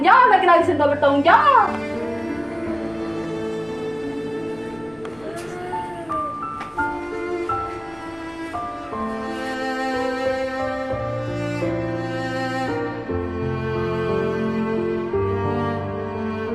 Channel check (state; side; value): noise; left; rumble, 25 dB below the sound